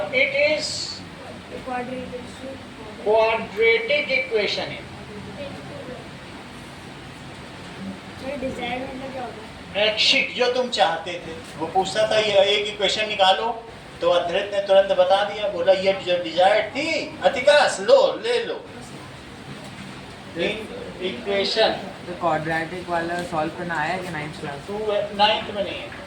इट इज क्वाड्रेटिक इक्वेशन है। डिजायर मतलब क्या होता है? ऐच्छिक, जो तुम चाहते थे। वो पूछता था ये एक इक्वेशन निकालो, तो अद्वैत ने तुरंत बता दिया, बोला ये जो डिजायर थी अतिकाश लो ले लो। इक्वेशन तो क्वाड्रेटिक वाला सॉल्व करना आया कि 9th क्लास? 9th में नहीं है,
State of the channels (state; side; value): identical; both; correlation 1.00